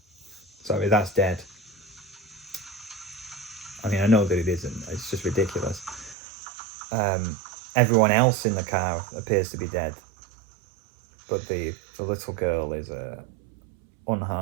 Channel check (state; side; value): drops out; left; at 6.2 s